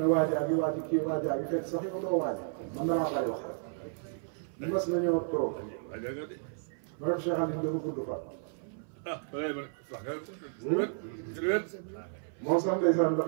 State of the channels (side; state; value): left; silent; 56 dB below the other